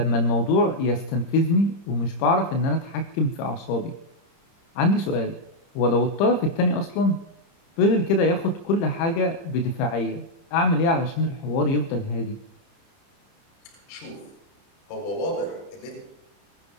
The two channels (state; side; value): late; right; 30 ms